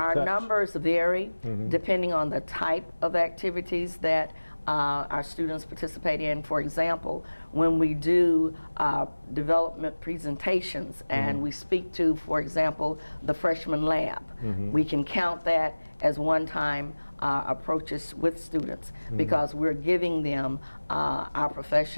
Our numbers vary depending on the type of activities that our students participate in. For example, when we do development presentations and we speak to, for example, the freshman lab, we can count that as one-time approaches with students, because we're giving them our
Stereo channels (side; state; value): both; inverted; correlation -1.00